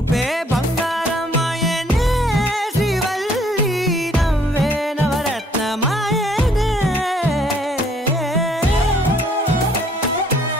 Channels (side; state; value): both; normal; correlation 0.62